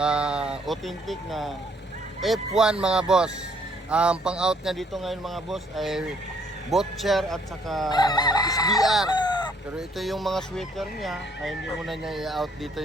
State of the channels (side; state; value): both; normal; correlation 0.65